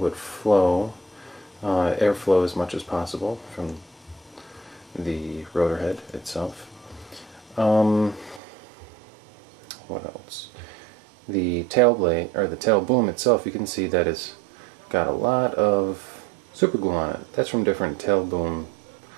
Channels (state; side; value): drops out; left; at 8.4 s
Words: flow, airflow as much as possible from the rotor head itself. What else? The tail blade, or the tail boom itself, you can see that it's got a lot of super glue on it. That's from different tail boom